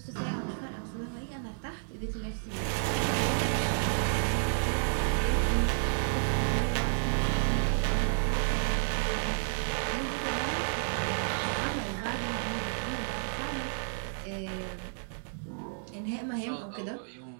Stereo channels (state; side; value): silent; left; digital silence